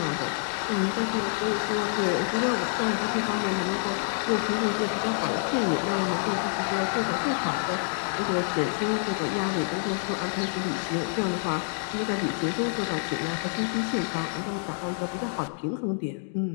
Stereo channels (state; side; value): silent; right; digital silence